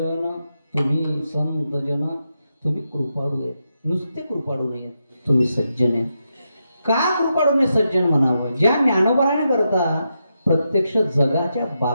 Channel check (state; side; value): inverted; both; correlation -0.85